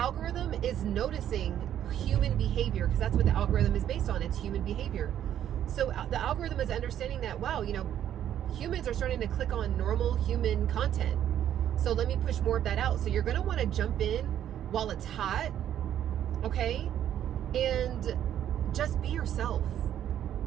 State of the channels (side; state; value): left; quieter; 10.6 dB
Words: is noticing human behavior, because that's what the algorithm is based on. It's human behavior. So the algorithm is understanding that, wow, you know, humans are starting to click on normal human content. So let me push more of that out. So you're going to want to jump in while it's hot, okay? And just be yourself.